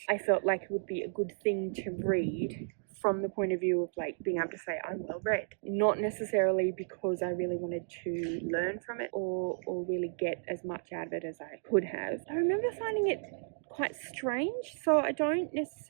I felt like it would be a good thing to read from the point of view of like being able to say I'm well read, not necessarily because I really wanted to learn from it or really get as much out of it as I could have. I remember finding it quite strange, so I didn't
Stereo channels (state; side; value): silent; left; digital silence